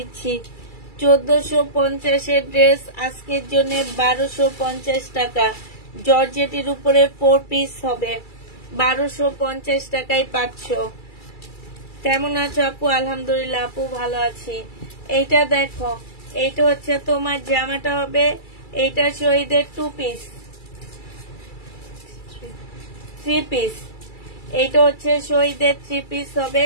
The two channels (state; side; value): late; right; 2.3 ms